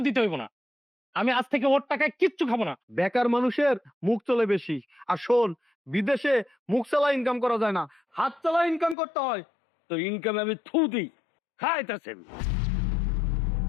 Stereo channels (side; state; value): right; drops out; at 9.0 s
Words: দিতে হইব না। আমি আজ থেকে ওর টাকায় কিচ্ছু খাবো না। বেকার মানুষের মুখ চলে বেশি, আর শোন, বিদেশে মুখ চালা ইনকাম করা যায় না, হাত চালা ইনকাম করতে হয়। তো ইনকাম আমি থু দিই, খাইতেছেন।